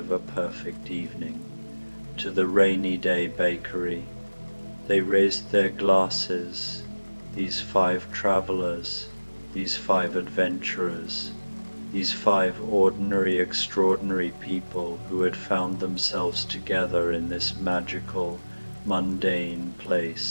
a perfect evening. To the Rainy Day Bakery. They raised their glasses, these 5 travelers, these 5 adventurers, these 5 ordinary, extraordinary people who had found themselves together in this magical, mundane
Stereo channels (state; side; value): inverted; both; correlation -1.00